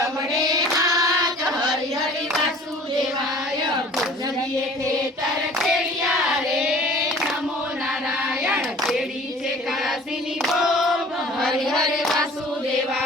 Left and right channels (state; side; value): normal; both; correlation 0.48